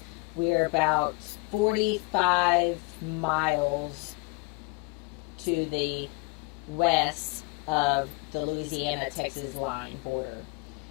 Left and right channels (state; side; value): quieter; right; 27.6 dB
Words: We are about 45 miles to the west of the Louisiana-Texas line border.